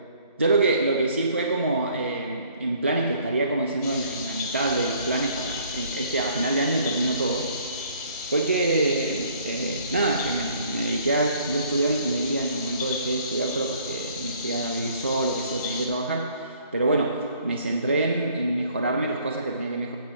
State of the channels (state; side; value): inverted; both; correlation -0.59